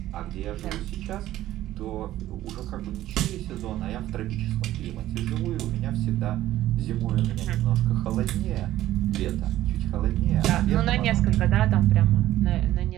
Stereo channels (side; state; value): left; quieter; 14.1 dB